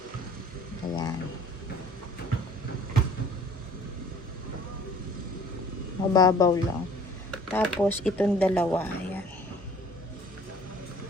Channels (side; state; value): both; normal; correlation 0.52